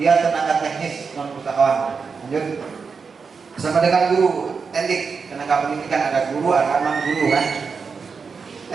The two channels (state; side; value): quieter; left; 5.3 dB